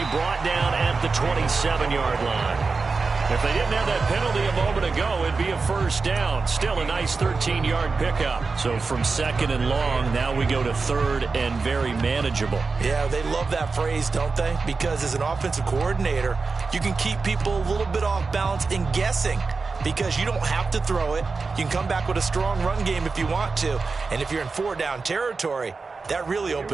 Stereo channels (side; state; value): left; quieter; 4.3 dB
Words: brought down at the 27-yard line. If they didn't have that penalty a moment ago, it'd be a first down. Still a nice 13-yard pickup. So from 2nd and long, now we go to 3rd and very manageable. Yeah, they love that phrase, don't they? Because as an offensive coordinator, you can keep people a little bit off balance and guessing, because you don't have to throw it. You can come back with a strong run game if you want to. And if you're in 4-down territory, that really